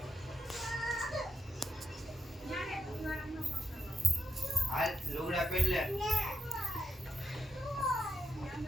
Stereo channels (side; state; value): both; normal; correlation 0.83